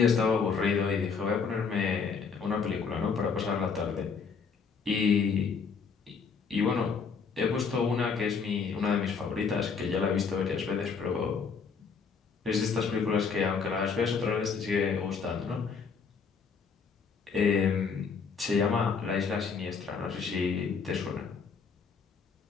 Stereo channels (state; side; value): quieter; right; 5.6 dB